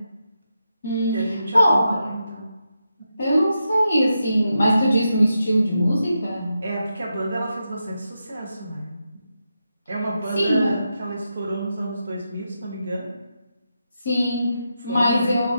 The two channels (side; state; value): both; inverted; correlation -0.86